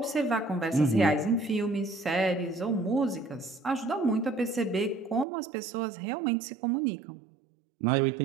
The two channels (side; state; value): left; drops out; at 5.2 s